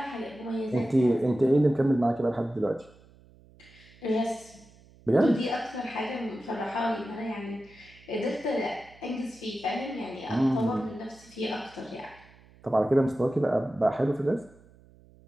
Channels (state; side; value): noise; right; hum, 26 dB below the sound